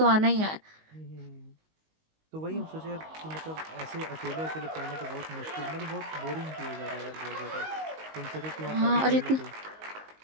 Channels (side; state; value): left; late; 19 ms